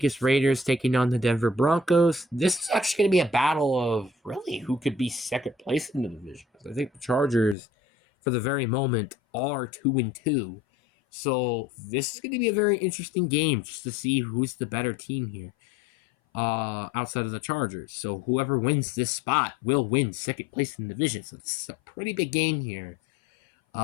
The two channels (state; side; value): drops out; right; at 7.6 s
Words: Raiders taking on the Denver Broncos. This is actually going to be a battle of really who could be second place in the division. I think the Chargers, for the very moment, are 2-2. So this is going to be a very interesting game just to see who's the better team here outside of the Chargers. So whoever wins this spot will win second place in the division. So this is a pretty big game here.